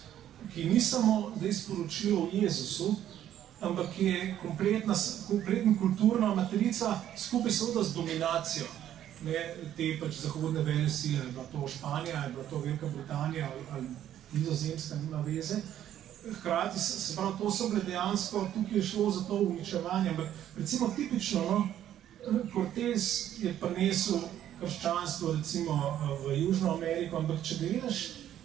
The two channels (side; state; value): left; quieter; 11.2 dB